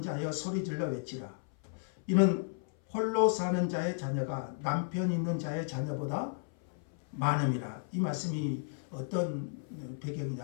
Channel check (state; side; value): silent; right; 55 dB below the other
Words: 자여 소리질러 외치라. 이는 홀로 사는 자의 자녀가 남편 있는 자의 자녀보다 많음이라. 이 말씀이 어떤